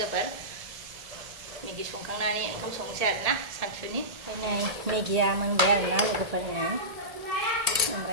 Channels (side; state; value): left; late; 1.8 ms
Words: मेगि संखांनानै ओंखाम संनोसै आरोना सानसुनि ओमफ्राय नै मेगिया मोनबाय आरोना लोगोफोरनो